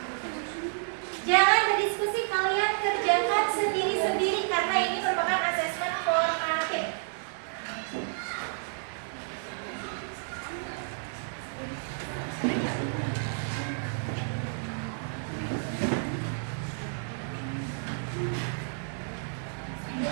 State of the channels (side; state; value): left; silent; digital silence